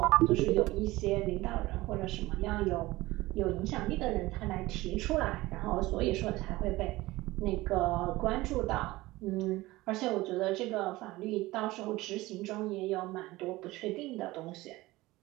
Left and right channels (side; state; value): left; quieter; 19.2 dB